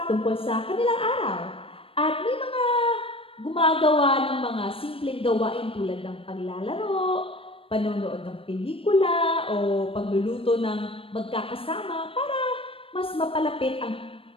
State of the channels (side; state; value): right; late; 0.27 ms